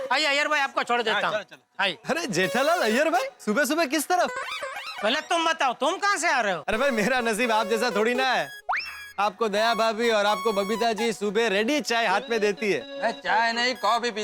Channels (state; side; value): identical; both; correlation 1.00